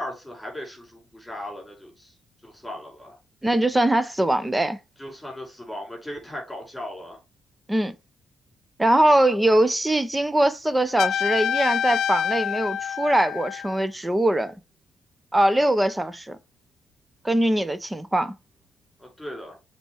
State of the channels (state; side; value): normal; both; correlation 0.91